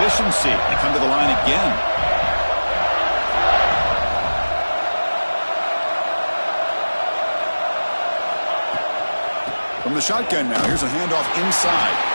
They come to the line again. From the shotgun now, here's a handoff inside.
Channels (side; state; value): both; inverted; correlation -1.00